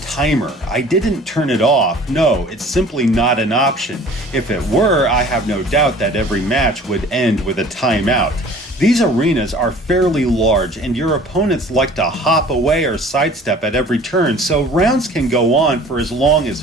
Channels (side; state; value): both; normal; correlation 0.48